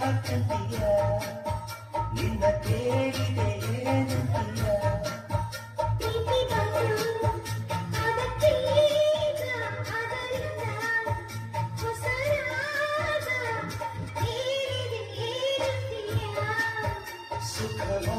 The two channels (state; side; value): identical; both; correlation 1.00